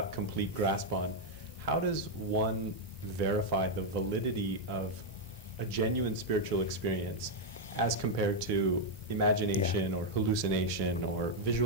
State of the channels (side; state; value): both; normal; correlation -0.01